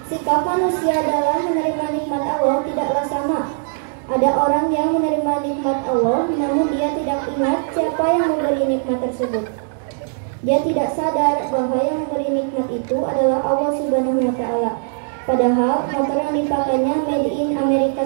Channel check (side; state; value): left; silent; digital silence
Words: Sikap manusia dalam menerima nikmat Allah tidaklah sama. Ada orang yang menerima nikmat Allah, namun dia tidak ingat siapa yang memberi nikmat tersebut. Dia tidak sadar bahwa yang memberi nikmat itu adalah Allah Subhanahu wa Ta'ala. Padahal motor yang dipakainya made in Amerika